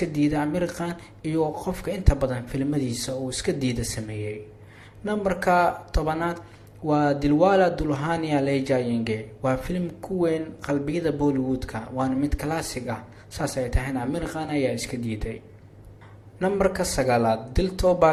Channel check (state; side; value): identical; both; correlation 1.00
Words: diiday Aamir Khan iyo qofka inta badan filimadiisa uu iska diiday sameeyay. Nambarka 10 waa Dilwala Dulhania Le Jayenge. waa filim ku weyn qalbiyada Bollywoodka, waana mid classic ah, saas ay tahay Aamir Khan ayaa iska diiday. Nambarka 9 Dil